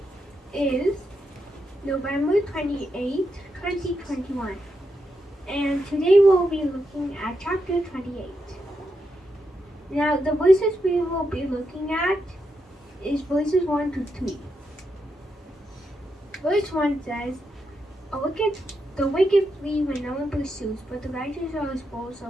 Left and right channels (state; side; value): normal; both; correlation 0.84